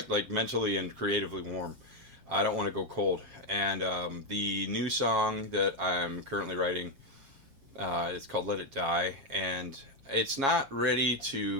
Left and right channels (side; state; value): left; late; 7.4 ms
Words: mentally and creatively warm. I don't want to go cold. And the new song that I'm currently writing is called Let It Die. And it's not ready